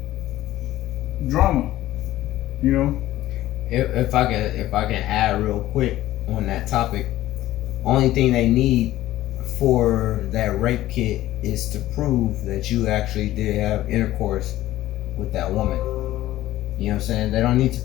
drama. You know. If I can add real quick on that topic, only thing they need for that rape kit is to prove that you actually did have intercourse with that woman. You know what I'm saying? They don't need to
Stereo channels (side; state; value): right; quieter; 15.0 dB